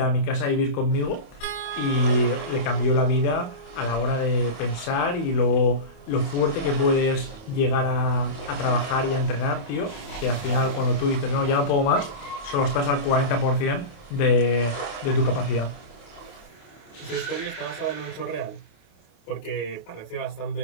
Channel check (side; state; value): right; late; 28 ms